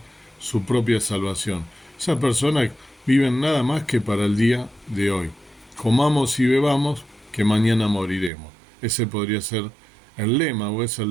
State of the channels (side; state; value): left; drops out; at 8.3 s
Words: su propia salvación. Esas personas viven nada más que para el día de hoy. Comamos y bebamos, que mañana moriremos. Ese podría ser el lema, o es el